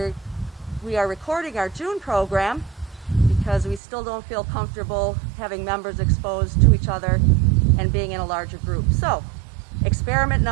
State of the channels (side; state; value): left; drops out; at 3.8 s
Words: We are recording our June program because we still don't feel comfortable having members exposed to each other and being in a larger group. So, experiment